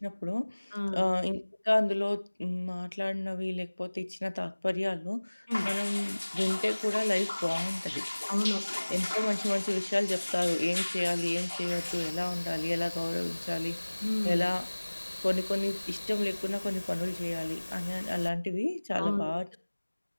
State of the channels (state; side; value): inverted; both; correlation -1.00